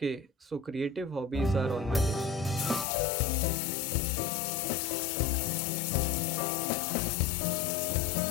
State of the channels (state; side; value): drops out; right; at 2.9 s